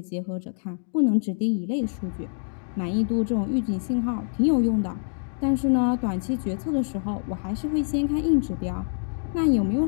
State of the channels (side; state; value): right; silent; digital silence